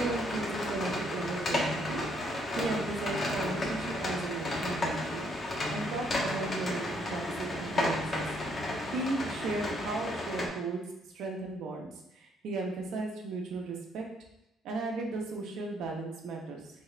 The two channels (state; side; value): normal; both; correlation 0.70